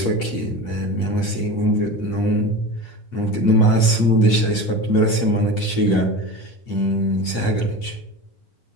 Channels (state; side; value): late; right; 8.3 ms